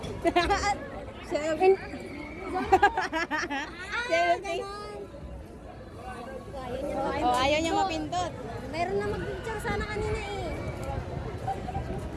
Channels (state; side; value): identical; both; correlation 1.00